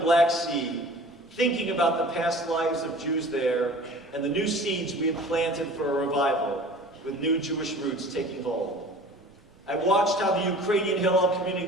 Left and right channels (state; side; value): normal; both; correlation 0.43